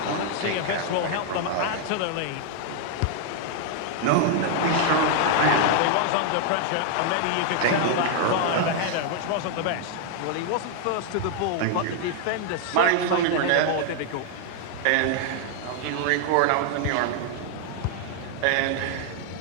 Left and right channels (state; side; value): different; both; correlation 0.00